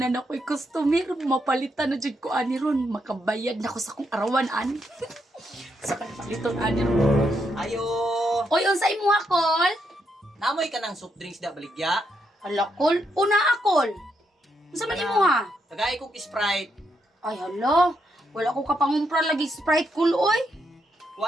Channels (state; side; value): normal; both; correlation 0.79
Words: ako'y customer, mapalitan na dyan ko ani ron, makabayad na ko sa kong arawan ani. Sa paliton ani ron. Ayo! Oy, unsa imo ha, Kol? Namoy ka ng soft drinks da baligya. Hala, Kol, una akol. Unsa man imo ha? Tagay kong Sprite. Ay, hala, wala ko kapangumpra lagi Sprite, Kol, oy.